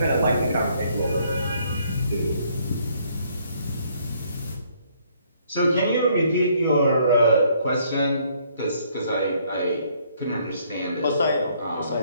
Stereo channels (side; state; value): both; inverted; correlation -0.66